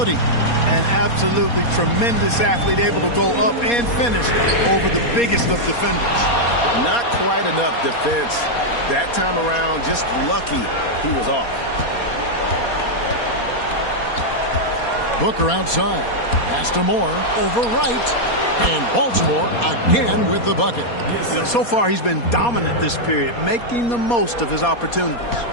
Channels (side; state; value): right; late; 4.2 ms